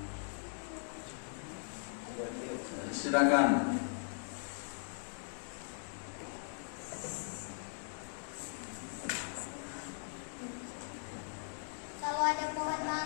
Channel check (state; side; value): silent; right; digital silence